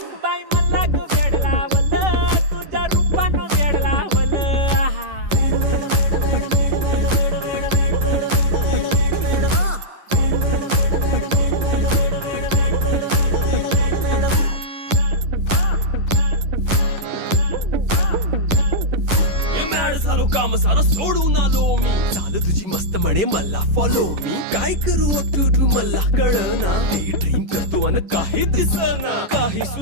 बाई मला ग वेड लावल तुझ्या रूपानं वेड लावल झालो काम सारा सोडून आलो मी चाल तुझी मस्त म्हणे मला फॉलो मी काय करू टू मला कळना ड्रीम करतो आणि काही दिसना काही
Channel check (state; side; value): late; left; 11 ms